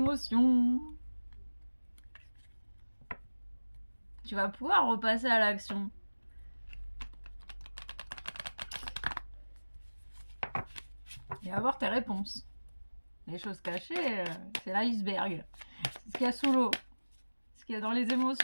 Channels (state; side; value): inverted; both; correlation -1.00